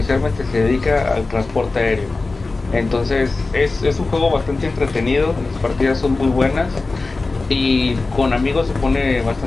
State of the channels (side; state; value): right; quieter; 3.6 dB